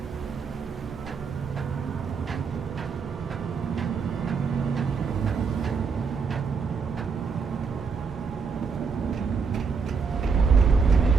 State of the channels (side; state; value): left; quieter; 5.4 dB